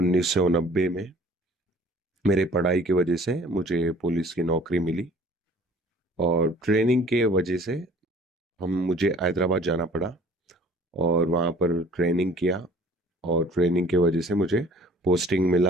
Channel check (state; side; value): normal; both; correlation 0.52